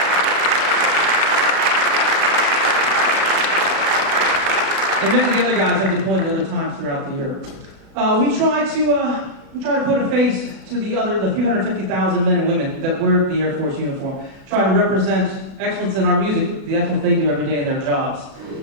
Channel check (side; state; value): left; late; 37 ms